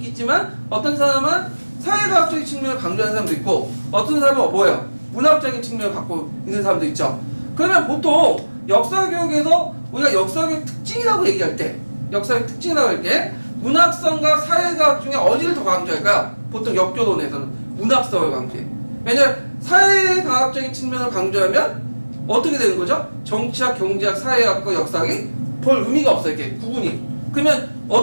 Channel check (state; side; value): inverted; both; correlation -1.00